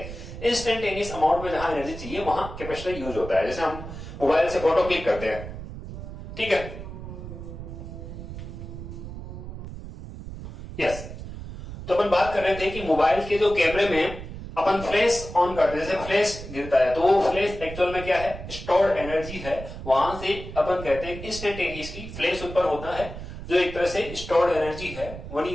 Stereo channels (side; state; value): right; noise; rumble, 10 dB below the sound